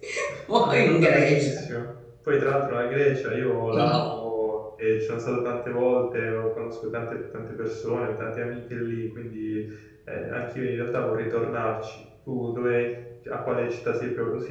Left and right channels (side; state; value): both; identical; correlation 1.00